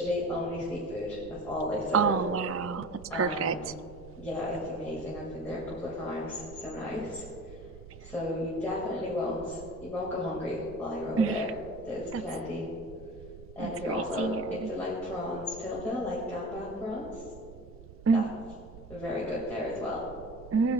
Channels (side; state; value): right; noise; rumble, 16 dB below the sound